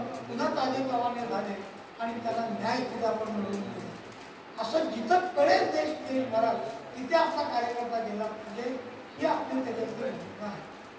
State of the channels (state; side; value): identical; both; correlation 1.00